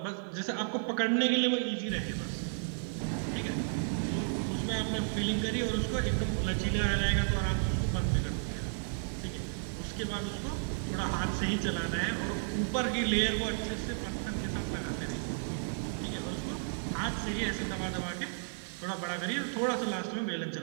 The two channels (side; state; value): left; silent; 56 dB below the other